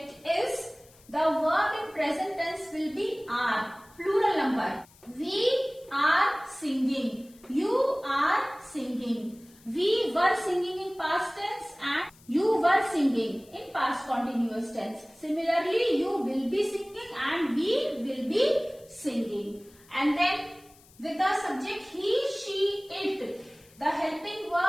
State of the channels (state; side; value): noise; left; hiss, 27 dB below the sound